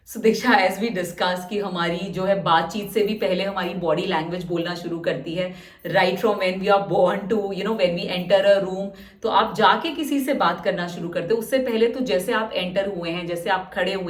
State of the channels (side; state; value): both; identical; correlation 1.00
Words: सो दीक्षा, एज वी डिस्कस कि हमारी जो है बातचीत से भी पहले हमारी बॉडी लैंग्वेज बोलना शुरू करती है, right from when we are born to when we enter a room. तो आप जाके किसी से बात करना शुरू करते हो, उससे पहले तो जैसे आप एंटर हुए हैं, जैसे आप खड़े